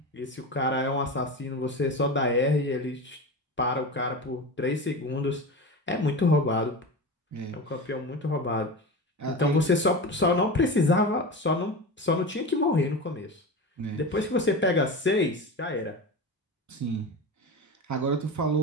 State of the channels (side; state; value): both; normal; correlation 0.26